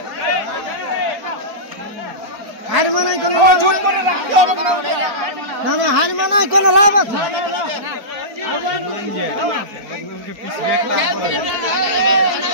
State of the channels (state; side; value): late; left; 4.4 ms